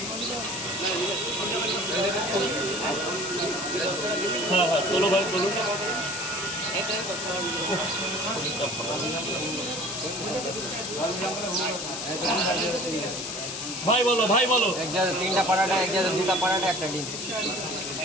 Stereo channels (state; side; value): noise; left; hiss, 5 dB below the sound